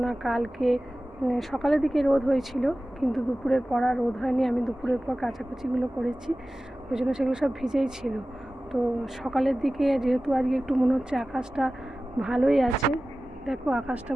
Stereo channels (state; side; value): normal; both; correlation 0.96